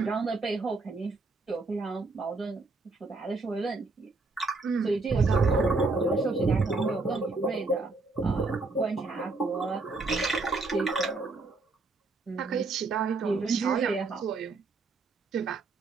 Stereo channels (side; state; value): left; quieter; 3.6 dB